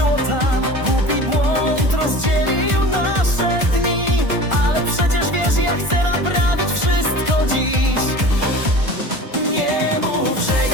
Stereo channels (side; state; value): left; late; 1.4 ms